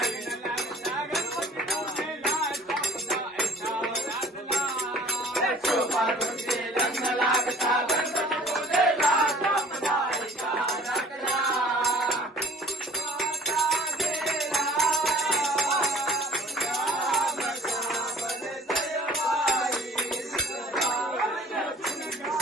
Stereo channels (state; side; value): normal; both; correlation 0.53